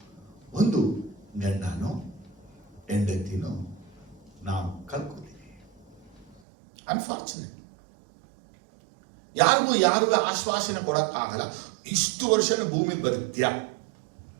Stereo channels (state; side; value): drops out; left; at 6.4 s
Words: ಒಂದು ಗಂಡನೋ ಹೆಂಡತಿನೋ ನಾವು ಕಳ್ಕೊತೀವಿ. ಅನ್ಫಾರ್ಚುನೇಟ್. ಯಾರಿಗೂ ಆಶ್ವಾಸನೆ ಕೊಡಕ್ಕಾಗಲ್ಲ. ಇಷ್ಟು ವರ್ಷ ಭೂಮಿ ಬದುಕ್ತ್ಯಾ,